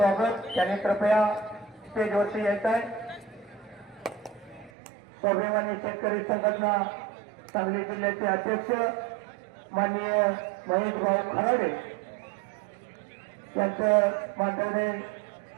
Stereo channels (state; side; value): drops out; left; at 4.7 s